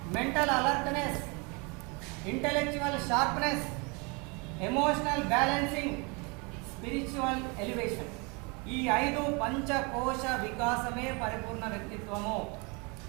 mental alertness, intellectual sharpness, emotional balancing, spiritual elevation. ఈ 5 పంచకోశ వికాసమే పరిపూర్ణ వ్యక్తిత్వము.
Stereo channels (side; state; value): left; quieter; 30.3 dB